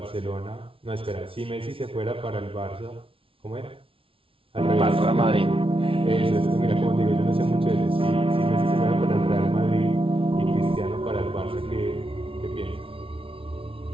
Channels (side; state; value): left; late; 0.26 ms